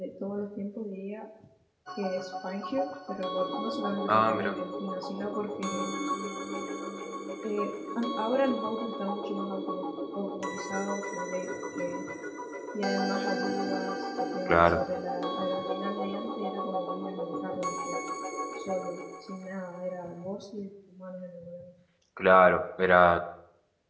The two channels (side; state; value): both; identical; correlation 1.00